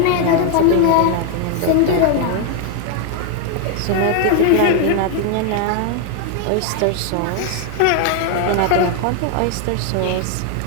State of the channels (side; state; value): both; different; correlation 0.00